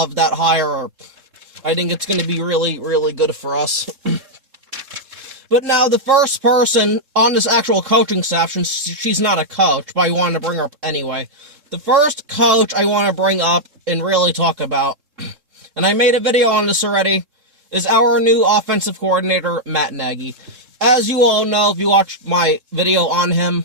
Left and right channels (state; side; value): late; left; 3.7 ms